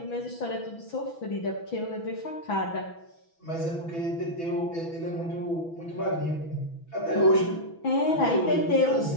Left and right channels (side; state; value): right; late; 6.0 ms